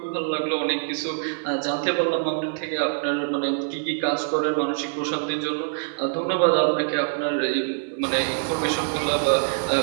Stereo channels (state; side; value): silent; left; digital silence